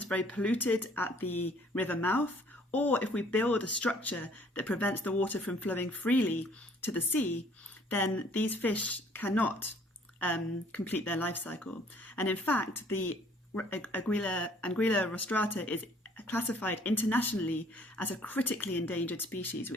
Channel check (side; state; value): both; normal; correlation 0.58